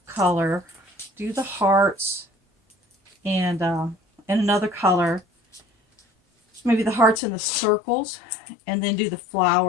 color, do the hearts and another color, maybe the hearts and the circles, and then do the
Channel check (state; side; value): drops out; right; at 7.2 s